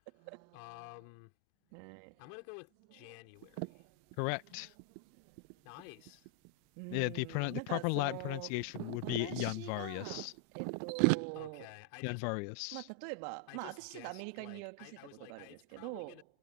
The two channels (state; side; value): different; both; correlation 0.00